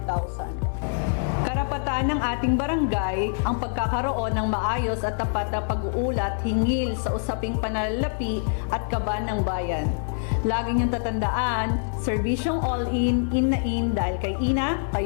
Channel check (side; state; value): right; silent; 62 dB below the other